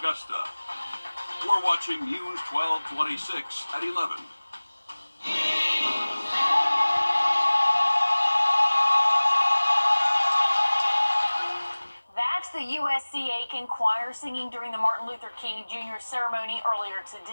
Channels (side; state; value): both; inverted; correlation -1.00